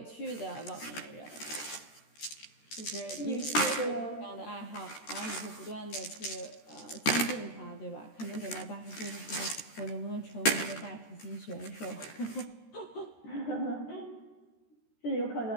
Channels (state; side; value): late; right; 13 ms